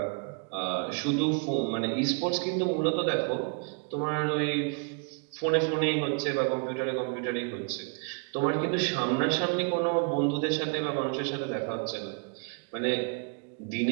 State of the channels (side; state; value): left; quieter; 38.7 dB